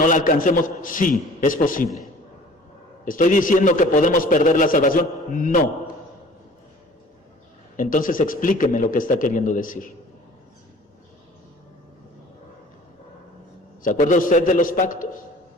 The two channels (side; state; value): both; normal; correlation 0.48